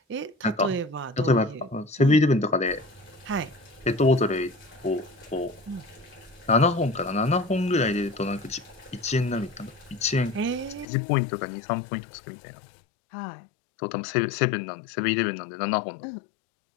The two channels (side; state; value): right; drops out; at 10.9 s